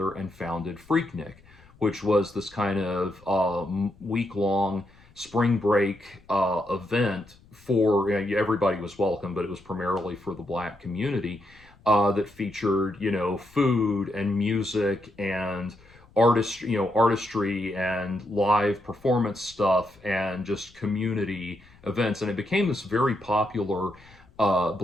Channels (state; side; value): noise; left; rumble, 27 dB below the sound